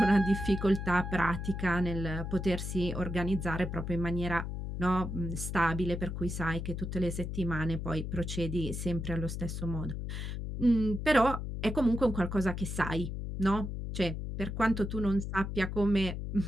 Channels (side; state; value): left; noise; hum, 5 dB below the sound